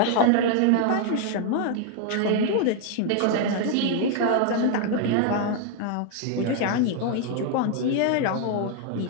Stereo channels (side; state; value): both; different; correlation 0.00